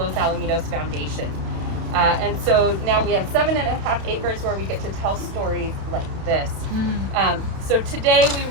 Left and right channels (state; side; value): late; left; 31 ms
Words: Alamitos Foundation. And so now we have 7.5 acres where we get to tell stories like this. So today we